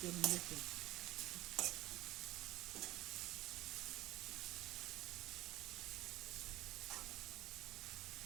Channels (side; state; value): left; quieter; 17.1 dB